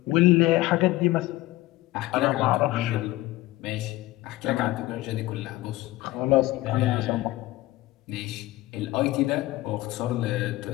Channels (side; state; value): right; quieter; 17.5 dB